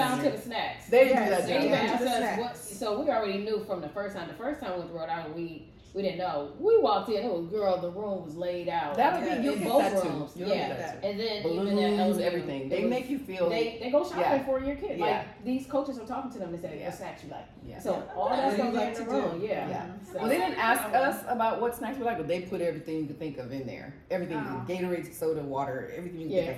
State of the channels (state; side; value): identical; both; correlation 1.00